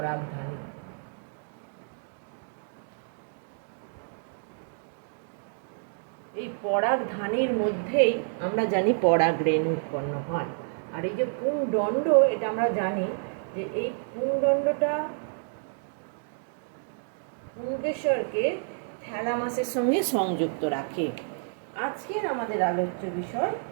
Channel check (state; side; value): silent; left; digital silence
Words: এই পরাগধানীর মধ্যেই আমরা জানি পরাগ রেণু উৎপন্ন হয়। আর এই যে পুংদণ্ড, এটা আমরা জানি যে এই পুংদণ্ডটা পুংকেশরকে থ্যালামাসের সঙ্গে সংযুক্ত রাখে। আজকের আমাদের আলোচ্য বিষয়